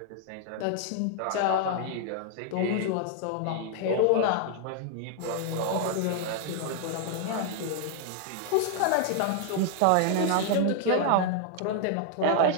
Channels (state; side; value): different; both; correlation 0.00